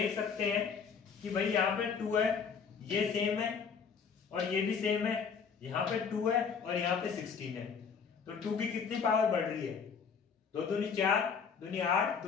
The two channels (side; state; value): right; quieter; 6.1 dB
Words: सकते हैं कि भाई यहाँ पे 2 है, ये सेम है और ये भी सेम है, यहाँ पे 2 है और यहाँ पे 16 है। तो 2 की कितनी पावर बढ़ रही है, 2 दूनी 4, दूनी 8,